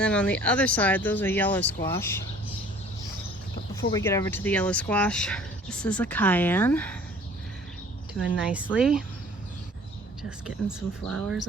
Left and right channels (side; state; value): both; normal; correlation 0.51